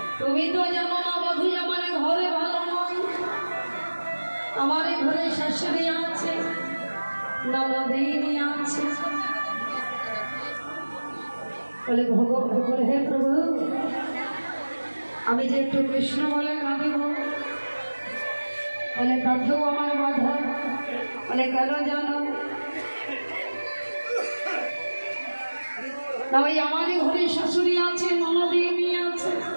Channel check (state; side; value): inverted; both; correlation -1.00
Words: তুমি তো জানো না বধূ আমার ঘরে ভালো নয়, আমার ঘরে শাশুড়ি আছে, ননদিনী আছে। বলে ভগবান, হে প্রভু, আমি যে একটু কৃষ্ণ বলে কাঁদিব, বলে তাতেও আমার বাধা। বলে কেন জানো না, ওই আমারই ঘরে শাশুড়ি আছে, ননদিনী আছে,